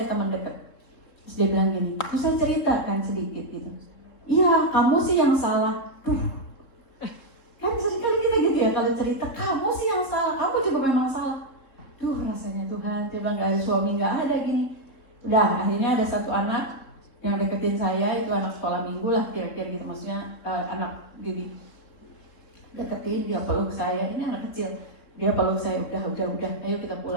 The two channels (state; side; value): late; right; 3.7 ms